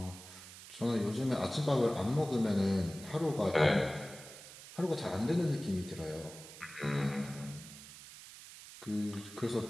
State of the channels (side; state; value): right; noise; hiss, 15 dB below the sound